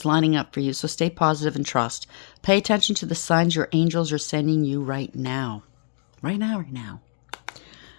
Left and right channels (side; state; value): right; silent; digital silence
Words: lining up for you, so stay positive and trust. Pay attention to the signs your angels are sending you right now. Right now.